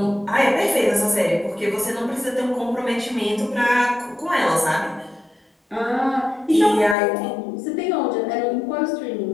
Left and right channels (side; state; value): right; drops out; at 7.0 s